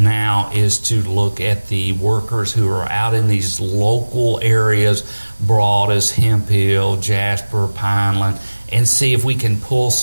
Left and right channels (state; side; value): inverted; both; correlation -1.00